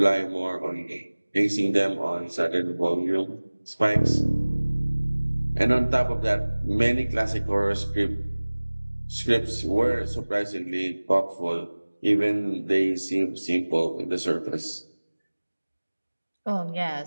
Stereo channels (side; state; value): both; inverted; correlation -1.00